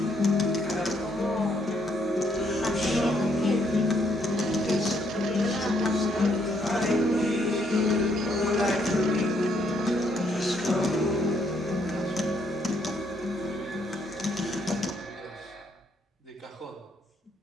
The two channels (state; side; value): normal; both; correlation 0.72